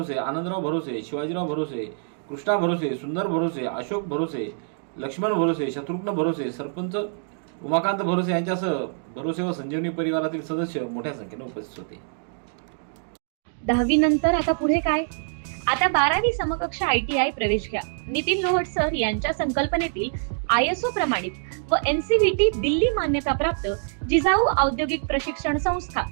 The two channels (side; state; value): left; silent; digital silence